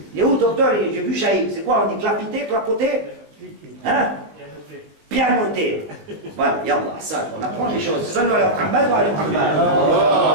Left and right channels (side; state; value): left; late; 19 ms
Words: Il est où, docteur? J'ai vu Chaïb. C'est quoi? On dit clapiter, clapoter? Hein? Pianoter. Voilà, yallah, ça, on apprend les choses. Sallu ala Muhammad wa ala Muhammad.